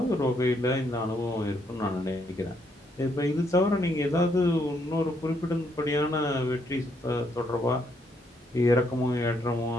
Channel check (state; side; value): normal; both; correlation 0.73